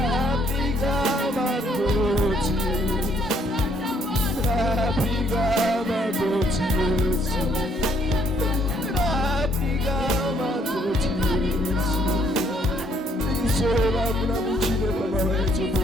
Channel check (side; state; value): both; normal; correlation 0.67